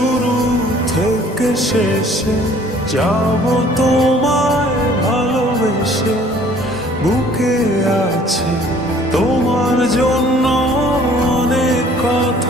থেকে শেষে যাব তোমায় ভালোবেসে। বুকে আছে তোমার জন্য অনেক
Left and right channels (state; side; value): normal; both; correlation 0.55